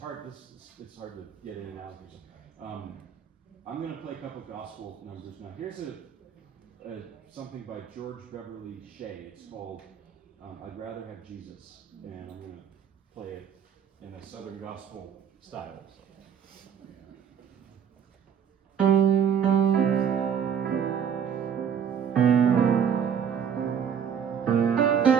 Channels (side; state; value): left; quieter; 8.0 dB